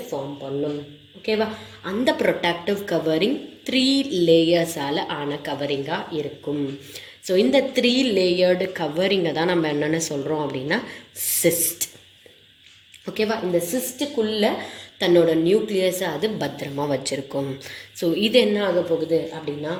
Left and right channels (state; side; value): identical; both; correlation 1.00